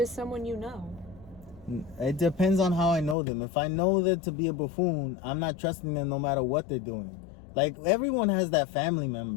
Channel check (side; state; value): right; drops out; at 3.2 s